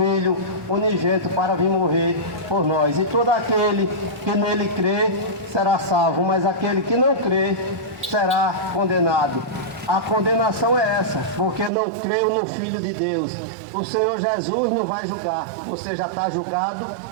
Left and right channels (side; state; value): left; drops out; at 11.7 s